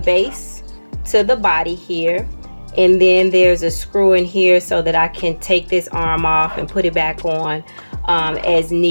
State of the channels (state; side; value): inverted; both; correlation -1.00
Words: base to the body here. And then there's a screw in here so that I can take this arm off and put it back on as